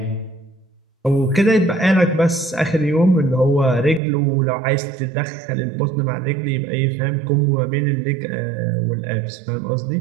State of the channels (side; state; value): left; drops out; at 4.0 s